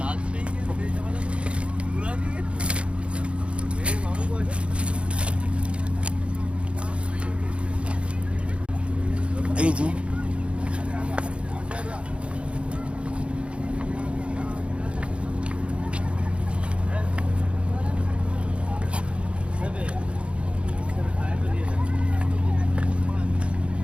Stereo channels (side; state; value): left; late; 0.059 ms